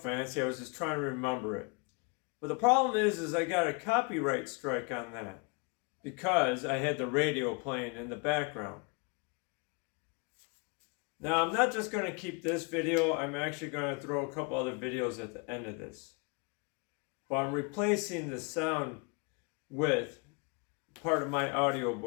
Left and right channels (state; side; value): quieter; right; 32.9 dB